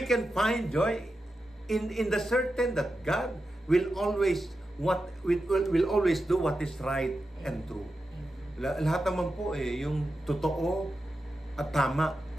can find joy in the certain that God will always will always do what is right and true. Lahat naman po yung totoo at tama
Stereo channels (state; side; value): normal; both; correlation 0.90